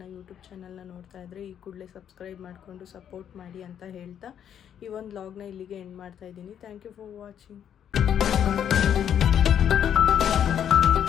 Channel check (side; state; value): right; quieter; 9.2 dB